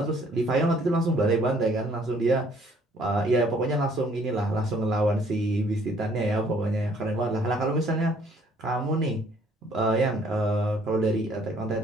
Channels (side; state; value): both; normal; correlation 0.61